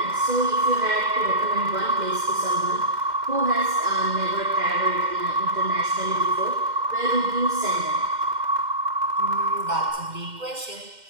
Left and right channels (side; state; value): left; late; 2.1 ms